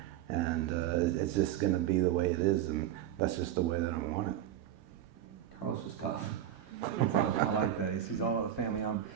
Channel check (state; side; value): quieter; left; 11.2 dB